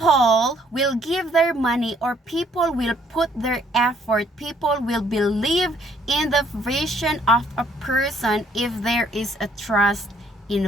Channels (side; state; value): both; normal; correlation 0.65